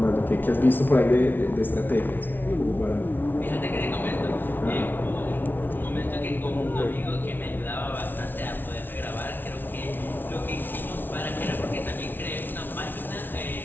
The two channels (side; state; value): right; late; 0.093 ms